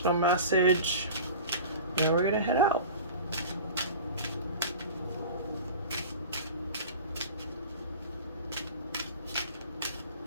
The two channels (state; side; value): inverted; both; correlation -0.37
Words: message, and then we're gonna head out.